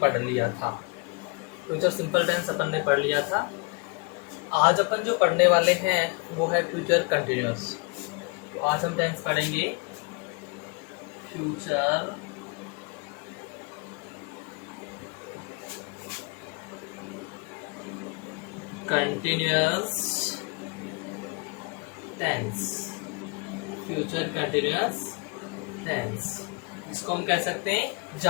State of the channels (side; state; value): right; quieter; 30.1 dB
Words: लिया था। फ्यूचर सिंपल टेंस अपन ने पढ़ लिया था। आज अपन जो पढ़ने वाले हैं वो है फ्यूचर कंटिन्यूअस। तो आज हम टेंस पढ़ेंगे future continuous tense. Future continuous tense, इसको हम कह सकते हैं